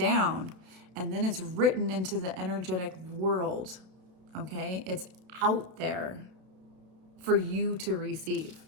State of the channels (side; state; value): left; late; 32 ms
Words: And then it's written into the energetic world, okay? It's out there for you to receive.